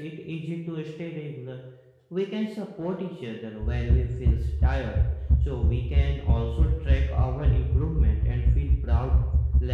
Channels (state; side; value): identical; both; correlation 1.00